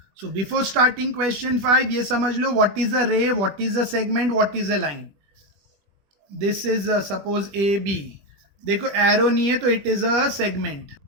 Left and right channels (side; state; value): left; late; 20 ms